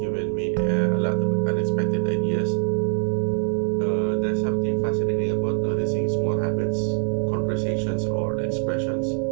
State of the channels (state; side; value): silent; left; digital silence